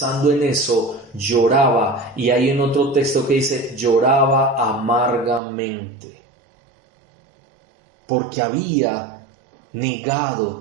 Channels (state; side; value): drops out; left; at 5.4 s